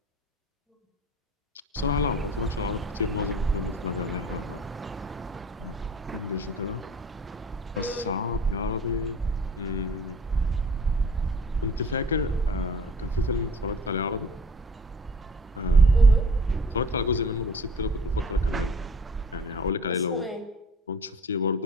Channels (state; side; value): normal; both; correlation 0.47